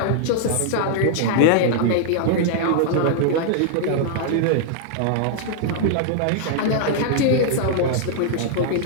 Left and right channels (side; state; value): both; different; correlation -0.01